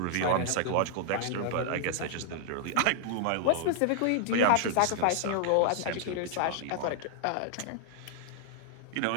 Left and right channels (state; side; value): different; both; correlation -0.01